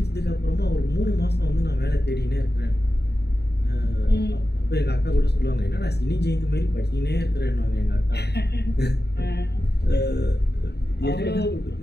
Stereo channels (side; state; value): right; late; 0.48 ms